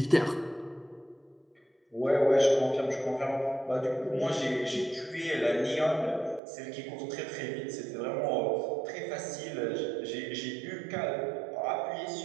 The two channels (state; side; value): drops out; left; at 6.4 s